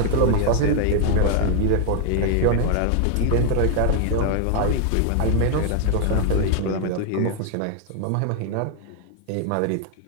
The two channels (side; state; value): both; different; correlation 0.00